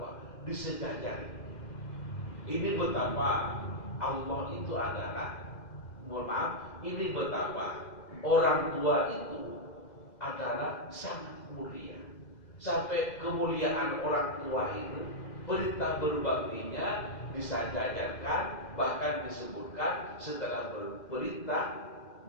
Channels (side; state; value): right; late; 2.0 ms